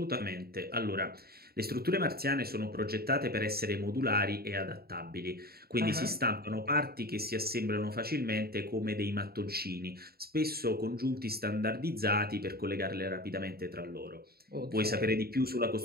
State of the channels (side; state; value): left; late; 0.45 ms